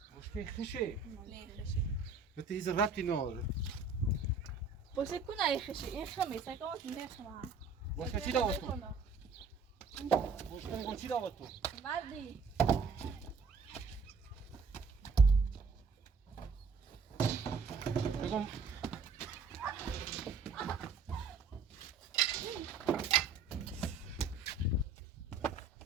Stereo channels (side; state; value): left; quieter; 4.7 dB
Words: بشکره خشه نه خشی بته ایز ربطی ناره باشه کنه ای خشی این خمی سکامت نه خمه بشکره چی داوت تو؟ بشکره میگم چی داوت تو؟ وردی بگم